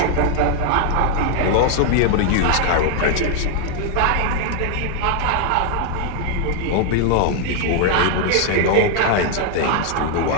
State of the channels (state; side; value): different; both; correlation 0.00